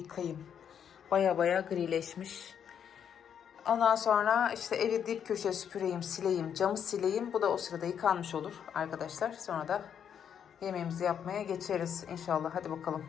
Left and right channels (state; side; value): quieter; right; 8.4 dB